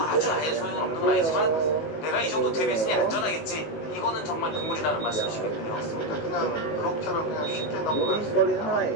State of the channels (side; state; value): right; late; 19 ms